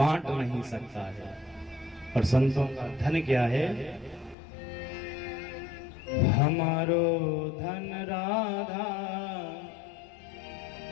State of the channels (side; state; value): right; drops out; at 4.4 s